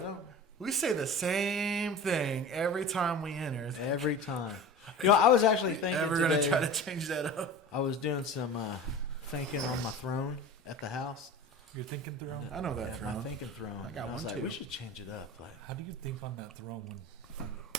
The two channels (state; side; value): normal; both; correlation 0.35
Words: we say the same thing every time we enter. Every time. You know, I was actually thinking Ever today... going to try to change that up? I was doing some thinking on my throne at the house. You're thinking throne? I know that Yeah, throne. my thinking throne. And I was like, we should change it up. Like, How do you think on that throne when...